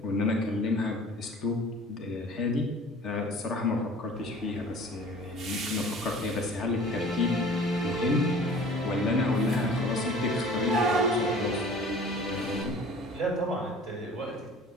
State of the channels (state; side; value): normal; both; correlation 0.46